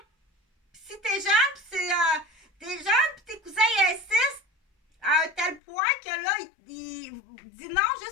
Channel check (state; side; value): drops out; right; at 5.6 s